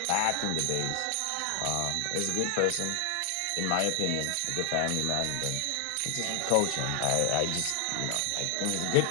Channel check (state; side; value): different; both; correlation 0.00